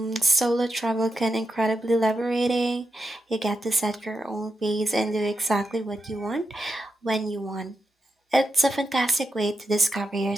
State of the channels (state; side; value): normal; both; correlation 0.86